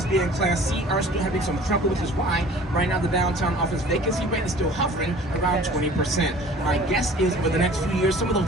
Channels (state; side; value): normal; both; correlation 0.47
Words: B and Class C are still having some trouble, which is why right now the downtown office vacancy rate is still hovering around 20%. My guess is over the next few years, some of